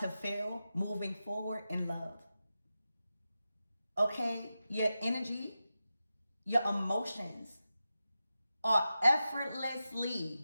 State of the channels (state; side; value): inverted; both; correlation -0.92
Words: feel moving forward in love. Okay? Your energy, your emotions are